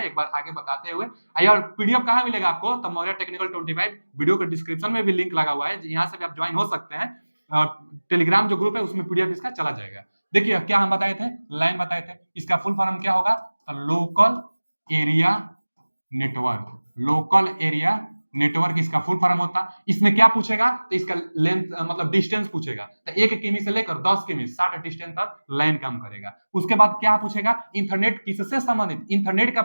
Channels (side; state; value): both; inverted; correlation -1.00